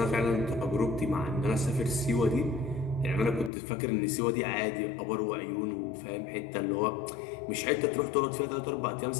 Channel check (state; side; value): drops out; right; at 3.5 s